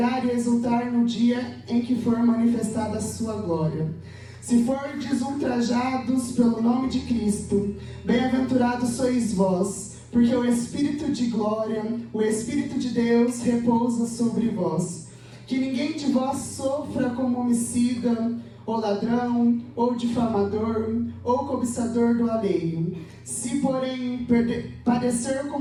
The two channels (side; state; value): both; identical; correlation 1.00